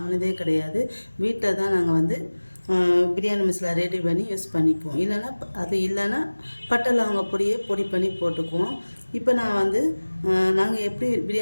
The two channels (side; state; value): both; inverted; correlation -1.00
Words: கிடையாது. வீட்டில் தான் நாங்கள் வந்து பிரியாணி மசாலா ரெடி பண்ணி யூஸ் பண்ணிக்குவோம். இல்லைன்னா பட்டை லவங்க பொடி பண்ணி போட்டுக்குவோம். இப்போ நான் வந்து நாங்கள் எப்படி